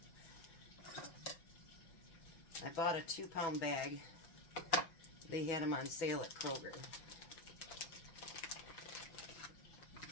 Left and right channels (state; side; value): late; right; 6.2 ms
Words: I bought a 2-pound bag. They had them on sale at Kroger.